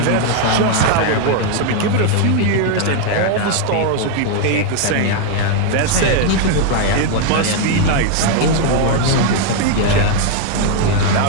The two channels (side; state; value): both; different; correlation 0.01